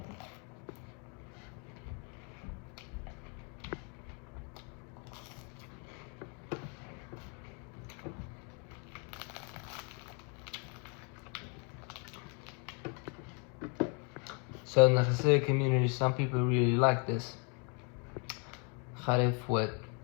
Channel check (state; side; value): quieter; right; 36.6 dB